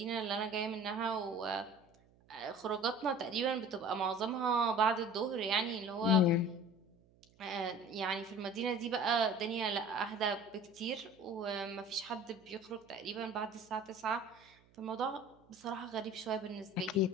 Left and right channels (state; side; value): noise; right; hum, 30 dB below the sound